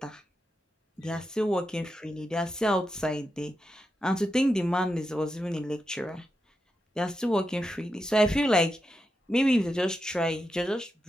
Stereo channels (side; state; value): both; normal; correlation 0.87